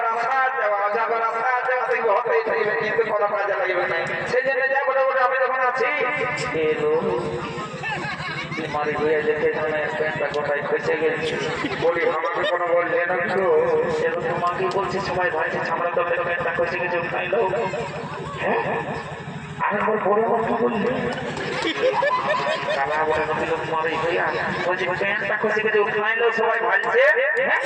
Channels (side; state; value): both; identical; correlation 1.00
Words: আসা যাওয়া অজা করে আসা যাওয়া দেখবে হতেই থাকবে কিন্তু কোনো কাজে লাগবে না সেই জন্য যা বলে বলে আমি যখন আছি মারি হয়ে যেতে প্যান্টটা গোটাই ফেসে গেছে বলি আমাকে কোনো বলছে না তো এবং তোমাকে বলছি সবাই ভাইছে আমরা তো প্যান্টটা ফেসে গেছে উঠাই লো হ্যাঁ আরেকবার বড় কথা বললি কালা বলে লোক মারি হইয়া বলছি প্যান্টটা ফেসে গেছে উঠাই লো সবাই ভাইছে